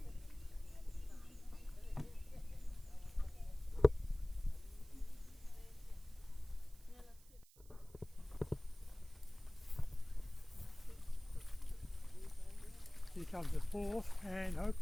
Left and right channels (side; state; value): right; noise; hiss, 24 dB below the sound